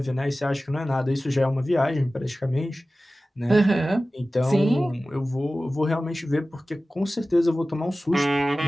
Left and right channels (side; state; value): both; normal; correlation 0.96